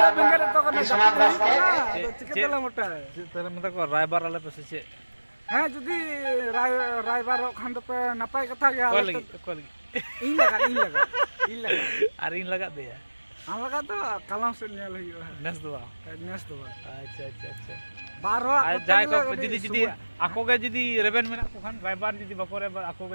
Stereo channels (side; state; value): both; inverted; correlation -1.00